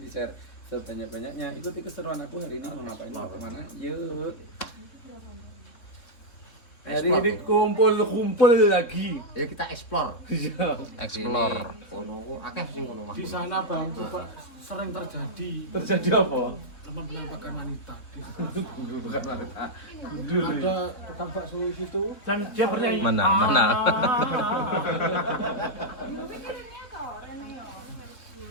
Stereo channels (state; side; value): late; right; 3.8 ms